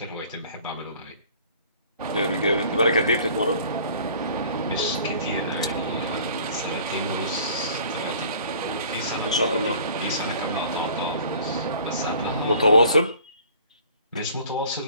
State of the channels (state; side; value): inverted; both; correlation -0.50